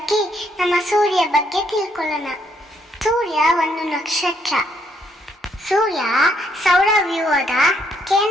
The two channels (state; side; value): normal; both; correlation 0.72